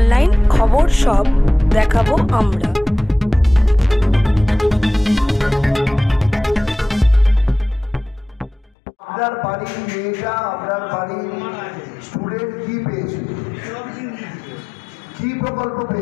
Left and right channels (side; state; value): right; drops out; at 8.8 s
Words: খবর সব দেখাবো আমরা। আপনার বাড়ির মেয়েটা, আপনার বাড়ির স্টুডেন্ট কি পেয়েছে, কি প্রকল্প